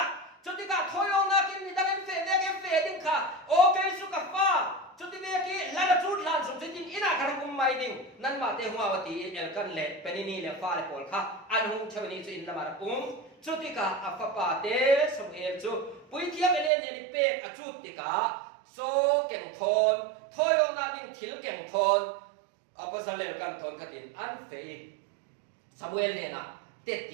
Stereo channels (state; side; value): drops out; left; at 16.7 s